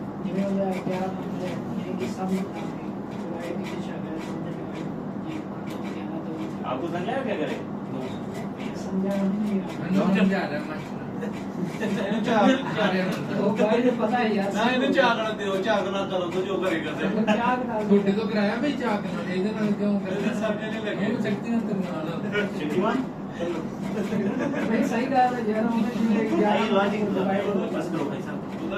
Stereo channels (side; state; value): both; identical; correlation 1.00